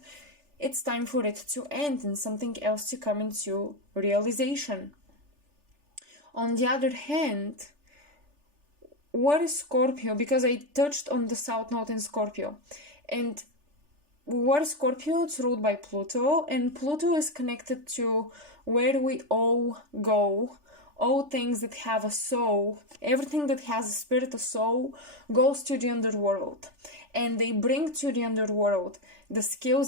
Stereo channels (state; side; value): late; left; 3.4 ms